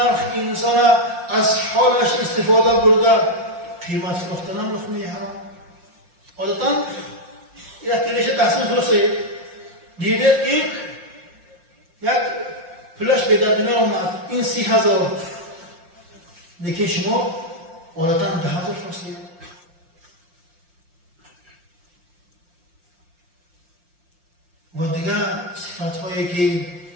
انسان از حالش استفاده برده قیمت فروختن هم لقمه حرام. عادتا یک کلیشه تحسین فروخته دیدید که یک پلاش به درد من اومد این 30,000 لیکن شما عادتا 10,000 فروختید. و دیگه صفات هایی که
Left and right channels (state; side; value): late; left; 5.7 ms